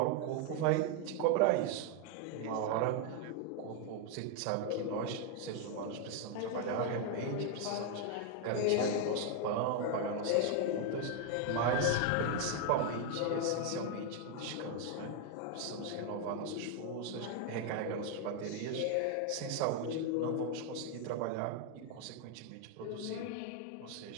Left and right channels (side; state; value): both; different; correlation 0.01